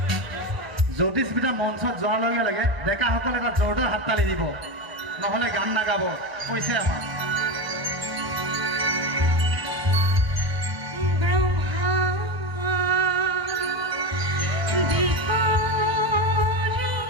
জ্যোতিস্মিতা মঞ্চত যোৱাৰ লগে লগে ডেকাসকলে এটা জোৰদাৰ হাততালি দিব নহ'লে গান নাগাব কৈছে আমাক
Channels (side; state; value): left; late; 1.0 ms